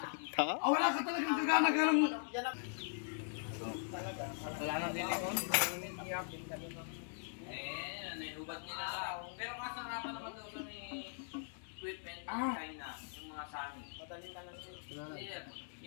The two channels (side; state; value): right; silent; digital silence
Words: Wala ka talagang gagana ng... Yan ang Wala nang lilingon. hubad nila lang. Pero kasarapan naman daw sa may equipment ng Ah. China, yung mga sani. Madaling ka lang sir. Sir,